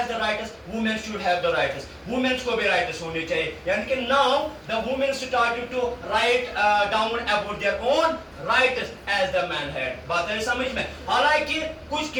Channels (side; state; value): both; identical; correlation 1.00